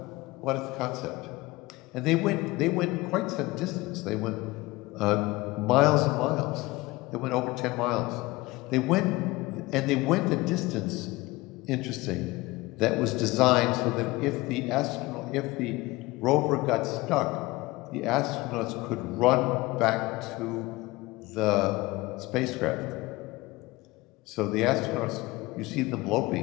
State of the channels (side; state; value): right; quieter; 21.0 dB